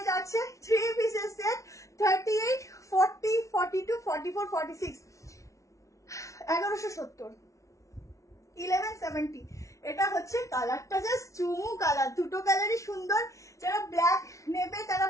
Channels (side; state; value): right; late; 0.15 ms